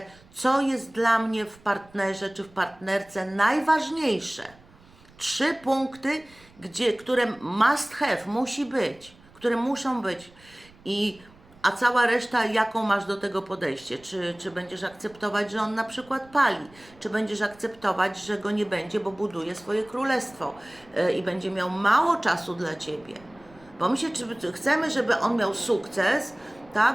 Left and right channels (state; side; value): noise; right; rumble, 26 dB below the sound